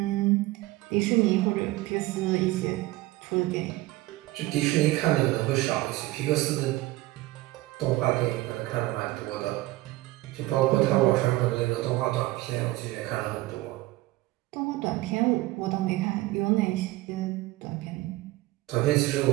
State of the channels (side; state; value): left; quieter; 18.8 dB